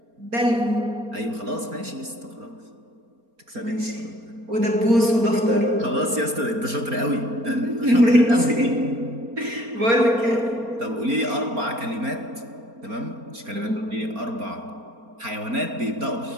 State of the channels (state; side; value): late; left; 4.3 ms